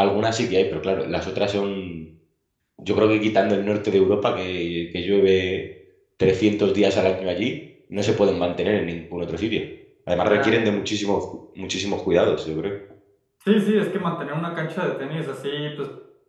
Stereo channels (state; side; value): identical; both; correlation 1.00